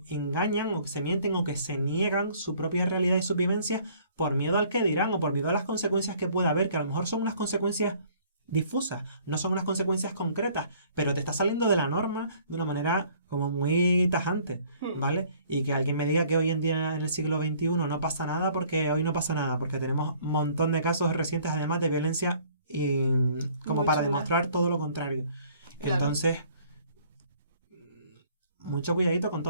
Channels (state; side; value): inverted; both; correlation -0.57